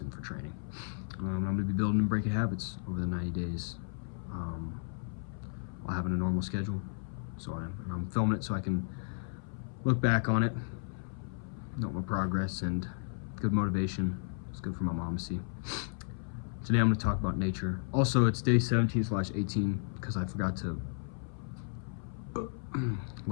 for training. I'm going to be building and breaking habits over the 90 days while having a normal schedule. So I'm filming it so I can look back on it, note my progress, and good motivation. It's good for my mom to see. Today I'm going to talk about nature. Also, it's day 17/18 because I forgot to.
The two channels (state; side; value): silent; right; 55 dB below the other